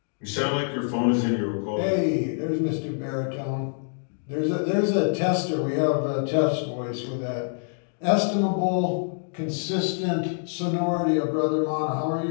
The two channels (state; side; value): silent; right; digital silence